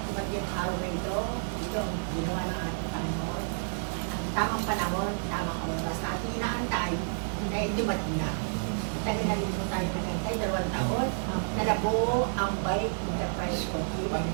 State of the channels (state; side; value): silent; left; digital silence